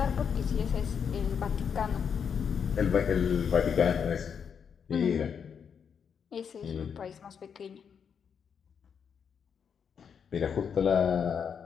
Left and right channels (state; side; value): quieter; right; 7.1 dB